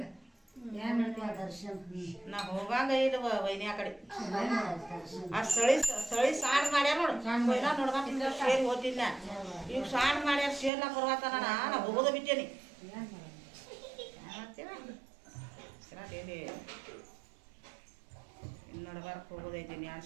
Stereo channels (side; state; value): left; drops out; at 10.7 s